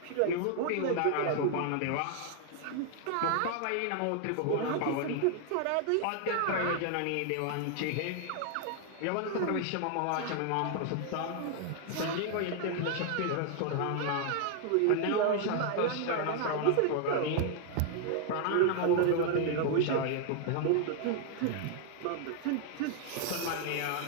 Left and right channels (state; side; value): different; both; correlation 0.00